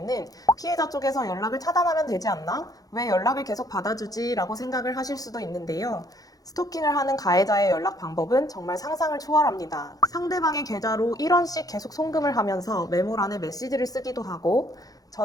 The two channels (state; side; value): late; right; 0.18 ms